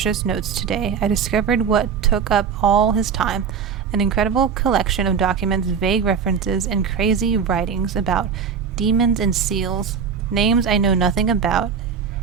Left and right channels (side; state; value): left; quieter; 6.6 dB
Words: notes today. I discovered what took up all his time. An incredible collection of documents, vague references, and crazy writings about demons and seals, names I know nothing about,